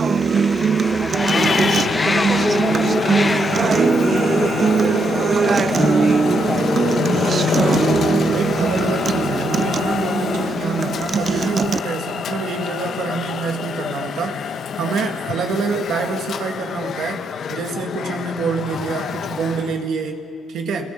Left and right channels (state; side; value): normal; both; correlation 0.78